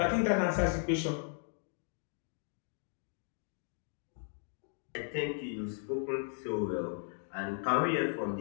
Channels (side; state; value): right; silent; 54 dB below the other